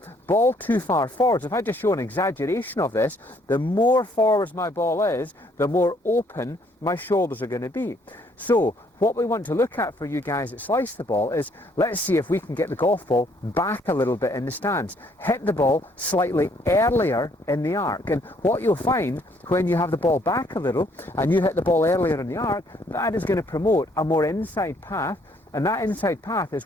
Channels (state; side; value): normal; both; correlation 0.66